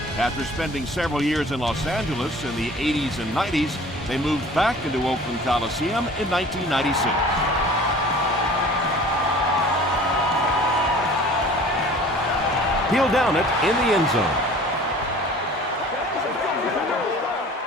After spending several years in Los Angeles in the 80s and 90s, they moved back into Oakland Coliseum in 1996. He'll down it in the end zone.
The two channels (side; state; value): both; normal; correlation 0.46